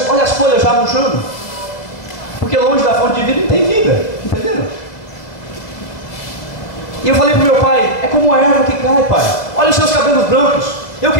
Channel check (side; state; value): right; late; 2.0 ms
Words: Olha as folhas já murchando. Porque longe da fonte de vida não tem vida, entenderam? E eu falei para o meu pai, é como a erva que cai, pai. Olha os seus cabelos brancos. Eu